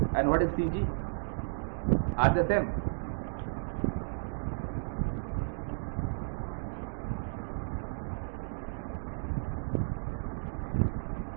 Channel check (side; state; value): left; silent; digital silence